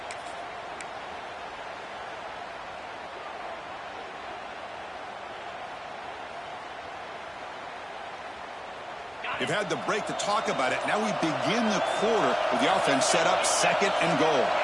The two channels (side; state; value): both; identical; correlation 1.00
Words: We've had the break to talk about it. Now we begin the quarter with the offense set up, second and goal.